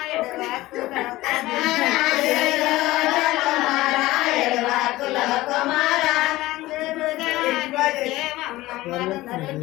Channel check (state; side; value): quieter; right; 17.9 dB